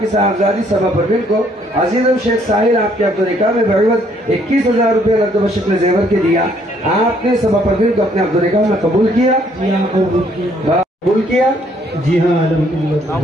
की साहबजादी सभा परवीन को अजीज़ शेख साहिल आपके अब्दुल निकाह में बहवत 21,000 रुपये नकद बशक्ल जेवर के दिया। आपने सभा परवीन को अपने अब्दुल निकाह में कबूल किया? जी हाँ, कबूल किया। जी हाँ,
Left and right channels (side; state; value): both; normal; correlation 0.66